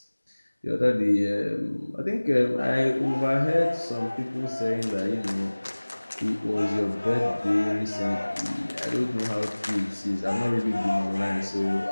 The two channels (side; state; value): both; inverted; correlation -1.00